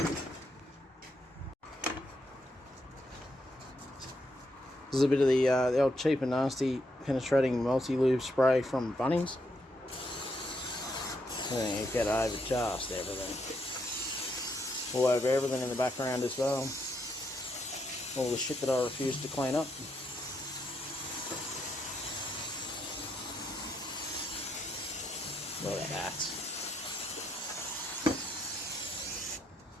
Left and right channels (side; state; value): both; normal; correlation 0.78